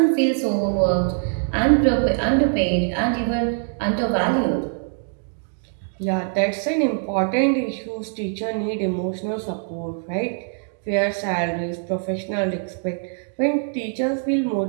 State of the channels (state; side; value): silent; left; 63 dB below the other